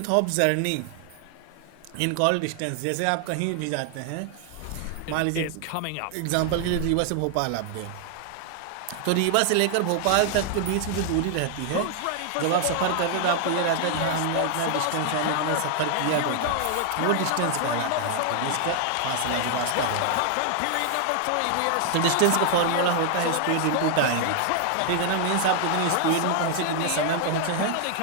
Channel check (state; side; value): different; both; correlation 0.00